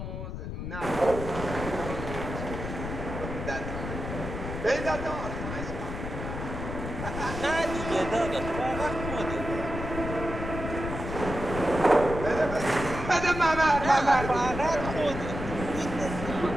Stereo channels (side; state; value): left; noise; rumble, 6 dB below the sound